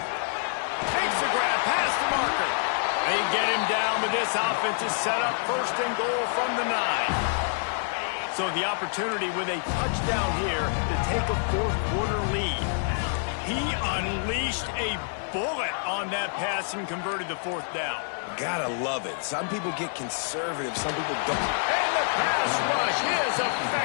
Takes the grab, past the marker. They get him down, but this offense is set up 1st and goal from the 9. So the opportunity with a touchdown here to take a 4th-quarter lead. He unleashed a bullet on that pass and converted the 4th down. Gotta love it. Some people get conservative, some people don't. And the pass rush is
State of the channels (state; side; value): silent; right; 60 dB below the other